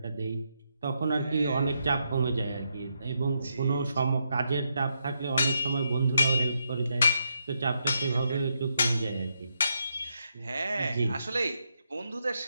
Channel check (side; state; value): both; inverted; correlation -0.81